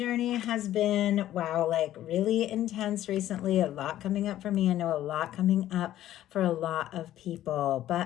has been, wow, like really intense recently. A lot coming up for me. I know a lot coming up for a lot of people.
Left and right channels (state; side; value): quieter; right; 13.0 dB